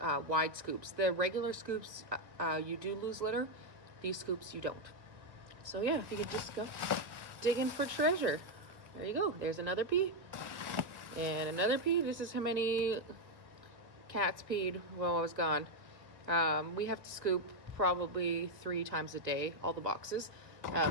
wide scoops. The regular scoops, you do lose litter. These scoops, you don't. So yeah, if you could just go digging for treasure. There you go. There's another pee. And another pee. This is how many cats peed while I was gone. We have to scoop probably 3 times a day, all the boxes.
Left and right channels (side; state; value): left; late; 1.6 ms